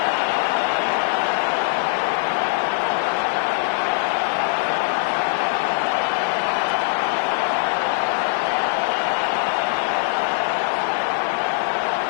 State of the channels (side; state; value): right; silent; digital silence